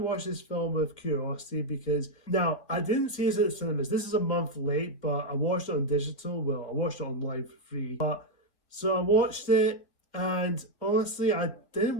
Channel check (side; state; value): right; late; 2.1 ms